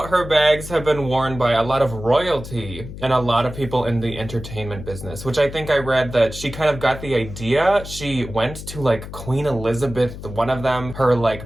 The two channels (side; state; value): left; noise; hum, 11 dB below the sound